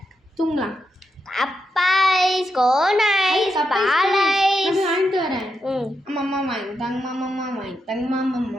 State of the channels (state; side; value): normal; both; correlation 0.84